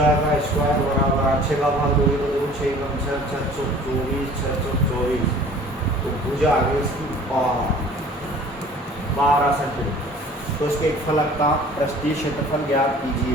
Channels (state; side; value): normal; both; correlation 0.48